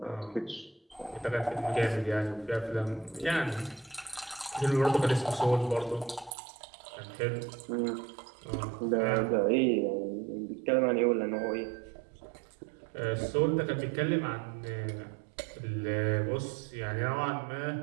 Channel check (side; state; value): left; drops out; at 6.3 s